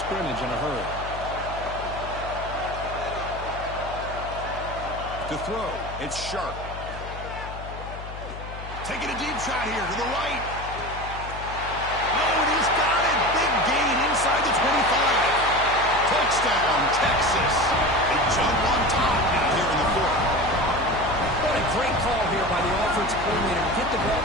in a hurry. To throw, it's Sharp. Taking a deep shot here to the right. Oh, and he's got it. Big gain inside the 25. Touchdown, Texas. They jump on top now here in the 4th. What a great call here by the offensive coordinator to get the ball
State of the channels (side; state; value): left; noise; hum, 11 dB below the sound